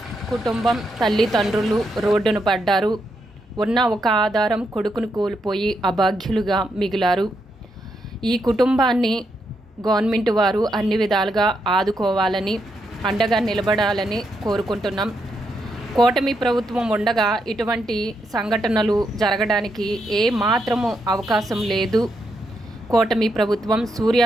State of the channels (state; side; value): normal; both; correlation 0.81